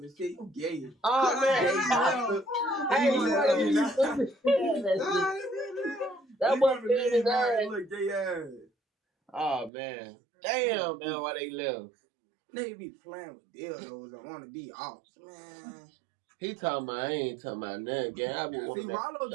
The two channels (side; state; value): left; drops out; at 9.7 s